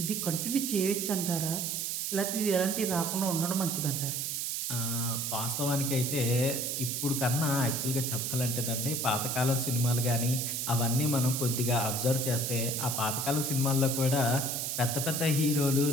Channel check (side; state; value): right; noise; hiss, 1 dB below the sound